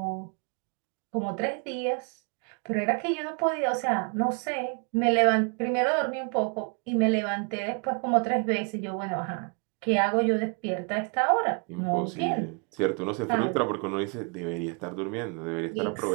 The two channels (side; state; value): left; quieter; 36.9 dB